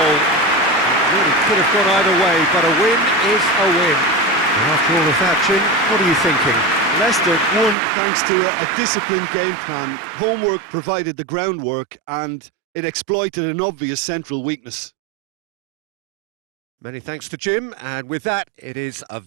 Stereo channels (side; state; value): left; drops out; at 7.8 s